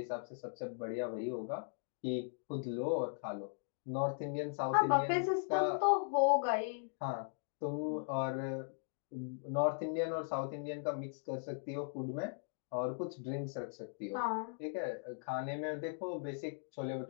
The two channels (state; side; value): silent; right; digital silence